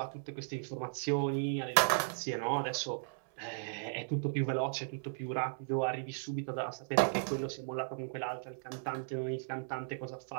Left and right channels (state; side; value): silent; left; 54 dB below the other